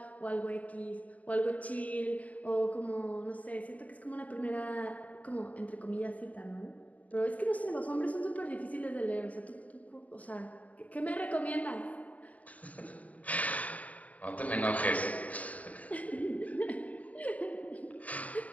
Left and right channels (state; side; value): late; right; 0.071 ms